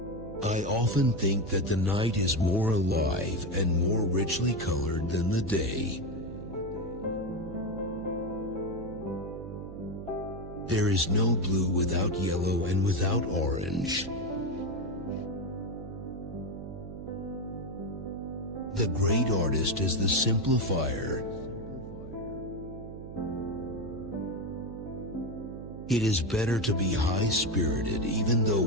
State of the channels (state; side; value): noise; right; hum, 11 dB below the sound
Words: I often think that the night is more alive and more richly colored than the day. There is no blue without yellow and without orange. The great artist is the simplifier. It is better to be high-spirited even though